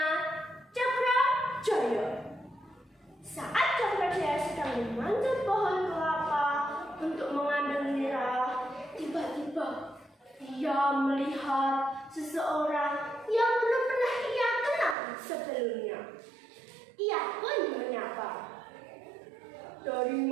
Cakrajaya. Saat Cakrajaya sedang memanjat pohon kelapa untuk mengambil nira, tiba-tiba ia melihat seseorang yang belum pernah ia kenal sebelumnya. Ia pun menyapa, "Dari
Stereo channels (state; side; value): drops out; left; at 15.0 s